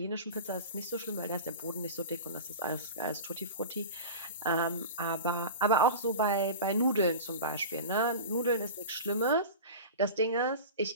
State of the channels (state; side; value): inverted; both; correlation -0.31